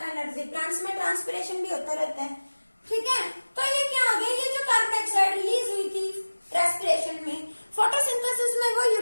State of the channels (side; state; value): both; inverted; correlation -1.00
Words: Plants में ट्रांसपिरेशन भी होता रहता है, ठीक है। तो ये क्या आ गया, ये जो कार्बन डाइऑक्साइड रिलीज हुई थी रेस्पिरेशन में, फोटोसिंथेसिस में वो